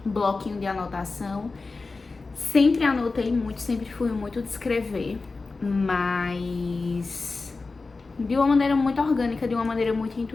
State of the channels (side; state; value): right; quieter; 3.9 dB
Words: bloquinho de anotação. Sempre anotei muito, sempre fui muito de escrever, mas de uma maneira muito orgânica, de uma maneira muito